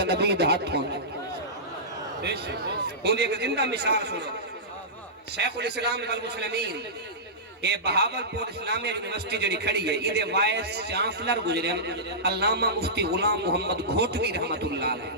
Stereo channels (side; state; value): both; normal; correlation -0.16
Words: نبی دا ہاتھ ہونے ان دی ایک زندہ مثال سنو شیخ الاسلام والمسلمین یہ بہاولپور اسلامیہ یونیورسٹی جڑی کھڑی ہے یہ دے وائس چانسلر گزرے علامہ مفتی غلام محمد گھوٹوی رحمت اللہ